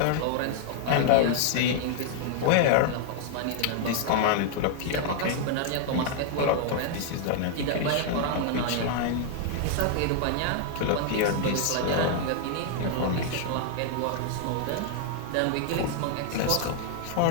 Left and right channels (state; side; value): different; both; correlation 0.00